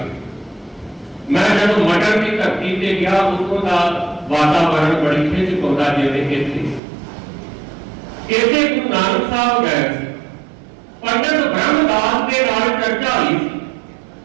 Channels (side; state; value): left; drops out; at 6.8 s